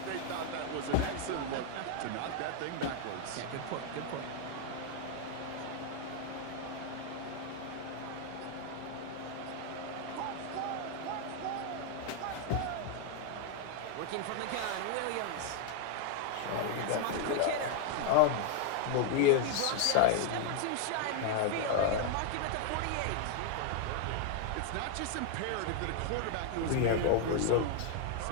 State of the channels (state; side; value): different; both; correlation 0.00